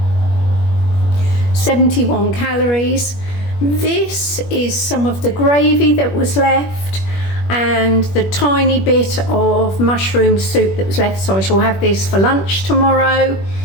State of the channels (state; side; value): late; right; 21 ms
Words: 71 calories. This is some of the gravy that was left, and the tiny bit of mushroom soup that was left. So I shall have this for lunch tomorrow